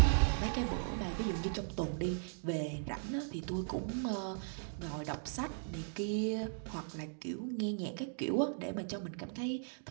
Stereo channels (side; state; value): left; silent; digital silence